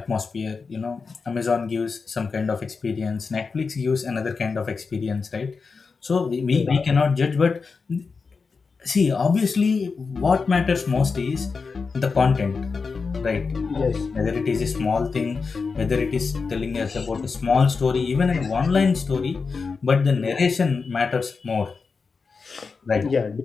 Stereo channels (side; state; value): right; quieter; 4.8 dB